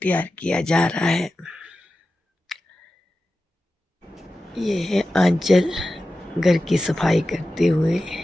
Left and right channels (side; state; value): both; normal; correlation 0.93